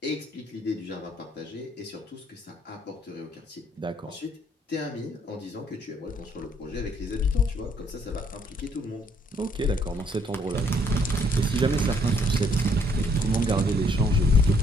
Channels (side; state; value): both; normal; correlation 0.66